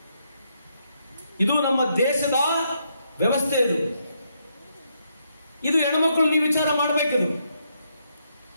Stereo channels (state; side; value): inverted; both; correlation -0.77